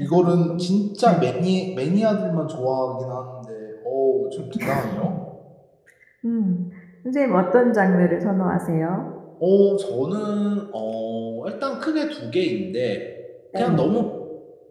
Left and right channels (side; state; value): both; identical; correlation 1.00